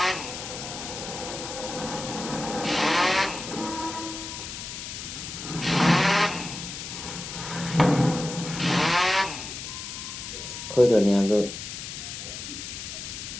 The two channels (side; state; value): left; noise; hiss, 8 dB below the sound